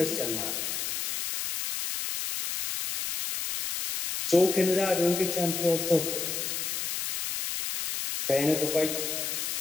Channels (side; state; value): left; noise; hiss, 3 dB below the sound